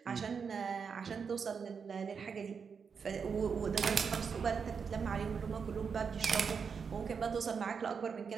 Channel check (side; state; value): left; quieter; 6.0 dB